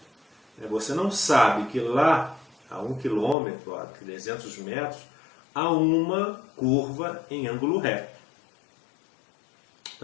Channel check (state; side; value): drops out; right; at 3.4 s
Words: você não sabe que lá a 1 quilômetro, a 300 metros, há uma curva em ângulo reto.